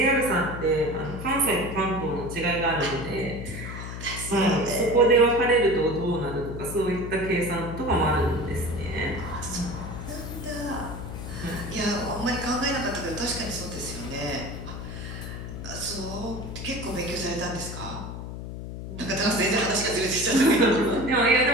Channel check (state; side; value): noise; left; hum, 8 dB below the sound